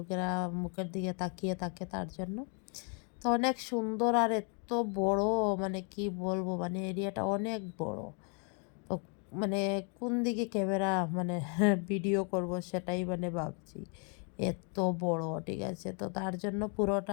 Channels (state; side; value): quieter; right; 39.1 dB